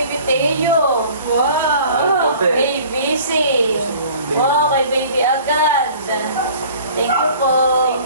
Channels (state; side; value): inverted; both; correlation -0.48